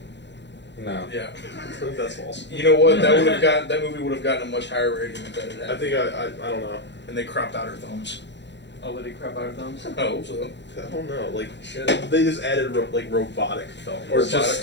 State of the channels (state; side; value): late; right; 0.52 ms